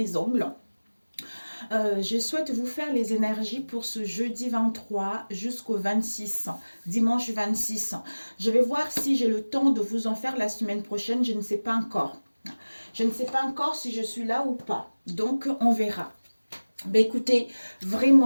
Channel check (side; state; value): both; inverted; correlation -1.00